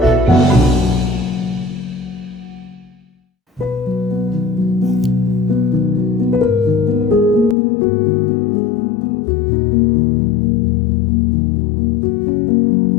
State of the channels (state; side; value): drops out; right; at 7.6 s